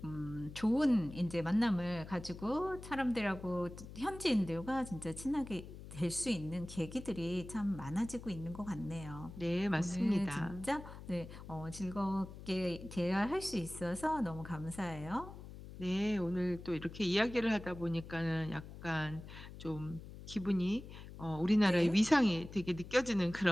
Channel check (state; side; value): noise; left; hum, 13 dB below the sound